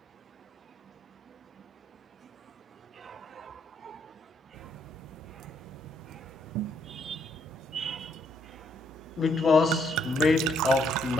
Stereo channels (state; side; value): normal; both; correlation 0.72